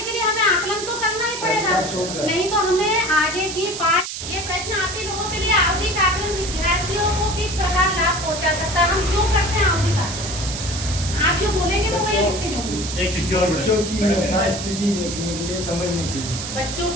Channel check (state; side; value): noise; right; hiss, 7 dB below the sound